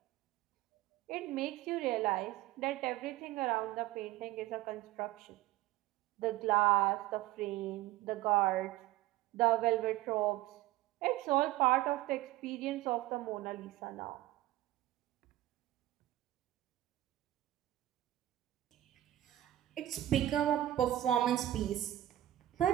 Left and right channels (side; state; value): left; quieter; 14.8 dB